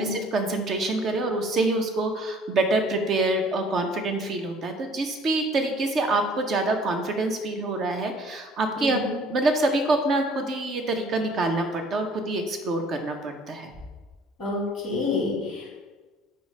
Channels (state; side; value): normal; both; correlation 0.55